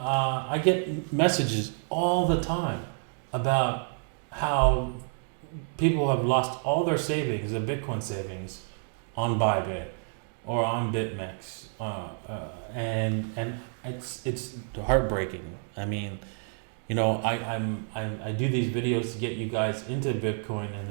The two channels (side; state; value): left; silent; 55 dB below the other